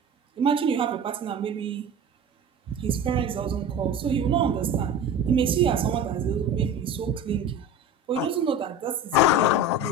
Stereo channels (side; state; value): both; normal; correlation 0.34